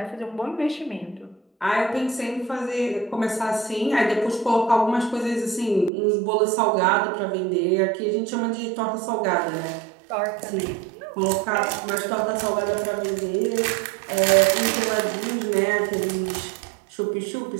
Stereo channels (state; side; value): drops out; left; at 5.9 s